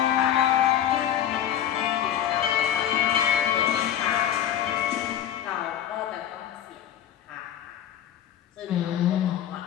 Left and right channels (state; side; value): quieter; right; 10.7 dB